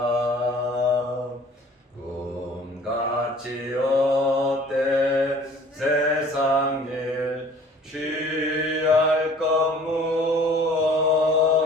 꿈같이 어때 세상 일 취할 것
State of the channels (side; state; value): both; normal; correlation 0.50